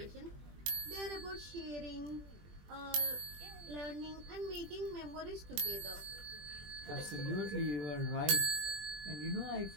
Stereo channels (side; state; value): left; late; 20 ms